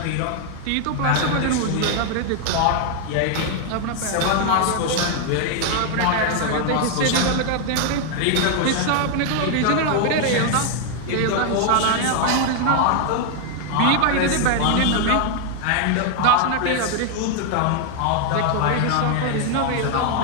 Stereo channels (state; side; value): different; both; correlation 0.00